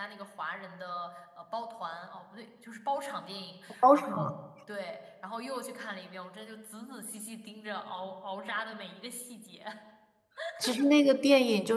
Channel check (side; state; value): both; identical; correlation 1.00